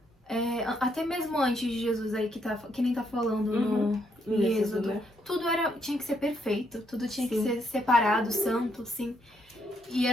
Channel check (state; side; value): normal; both; correlation 0.74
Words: até mesmo antes de Jesus aí, que nem tá falando no Êxodo, né? Tudo tinha que ser perfeito, tudo tinha que ser separado, santo, sim. E